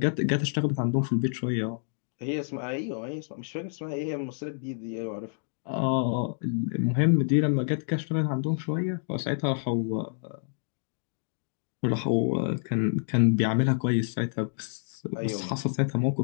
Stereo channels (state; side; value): silent; right; digital silence